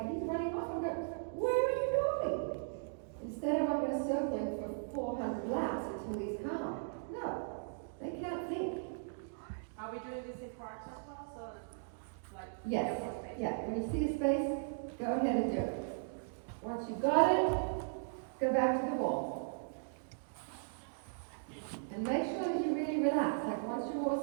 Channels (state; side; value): silent; left; digital silence